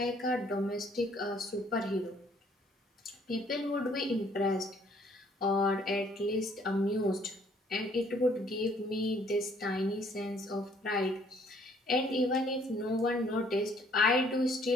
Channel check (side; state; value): both; normal; correlation 0.62